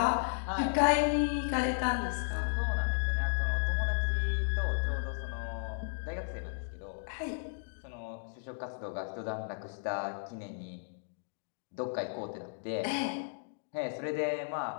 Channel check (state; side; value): silent; right; digital silence